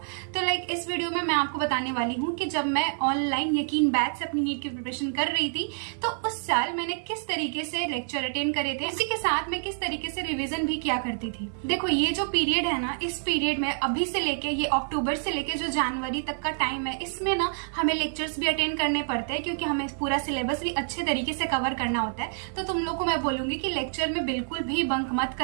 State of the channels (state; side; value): silent; left; 57 dB below the other